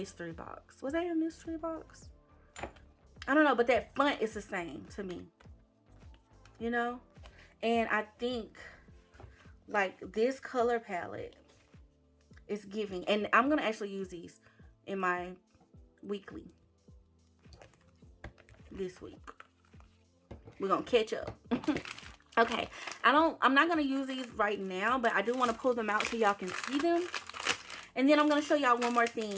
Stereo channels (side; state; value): both; identical; correlation 1.00